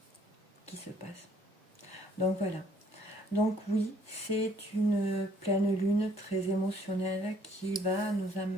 qui se passe. Donc voilà. Donc oui, c'est une pleine lune très émotionnelle qui va nous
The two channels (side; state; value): both; normal; correlation 0.62